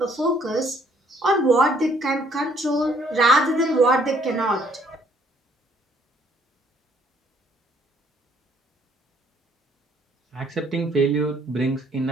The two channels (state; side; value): normal; both; correlation 0.64